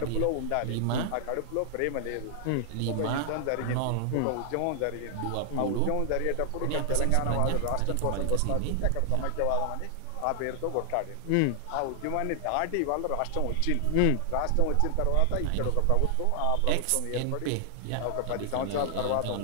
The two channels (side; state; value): both; different; correlation 0.00